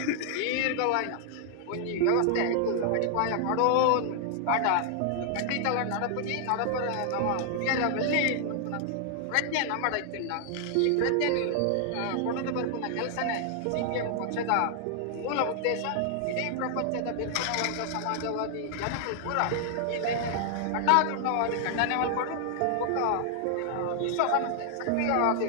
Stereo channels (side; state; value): both; different; correlation 0.00